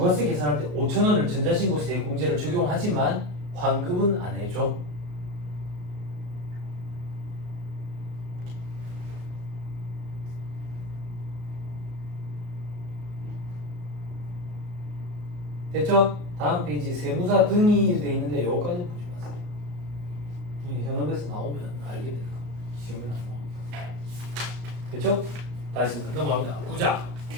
계산할 때 5,000원을 전자신고세 공제를 적용하지만 환급은 안 해줘. 됐죠? 다음 페이지 세무사 등이 되어 있는데 요거까지 보지 마세요. 현업에서 나오면 알게 되는 거. 지금은 안 나옵니다. 됐죠? 다시 넘어갑니다. 9장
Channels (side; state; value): left; late; 34 ms